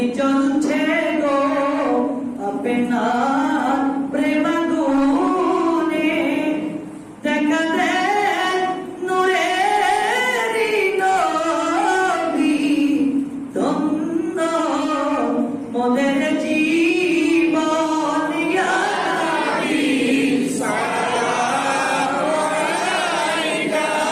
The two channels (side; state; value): both; identical; correlation 1.00